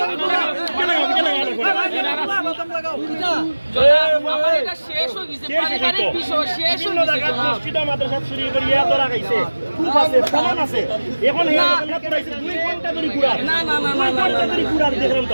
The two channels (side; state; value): both; inverted; correlation -1.00